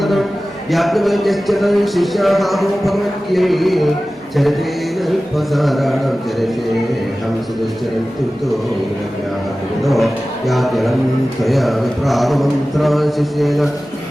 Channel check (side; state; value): both; normal; correlation 0.96